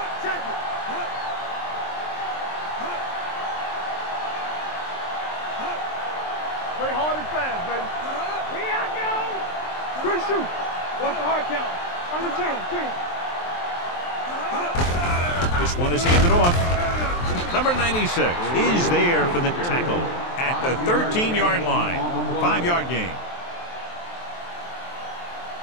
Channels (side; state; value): right; late; 23 ms